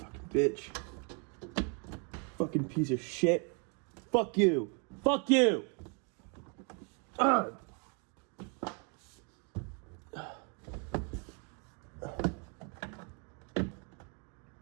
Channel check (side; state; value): left; quieter; 35.2 dB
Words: bitch. Fucking piece of shit. Fuck you. Fuck you! Ugh.